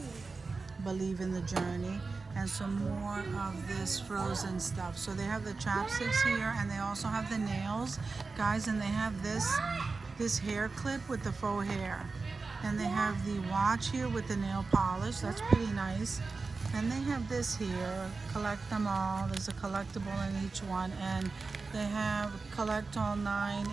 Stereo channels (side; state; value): left; quieter; 4.1 dB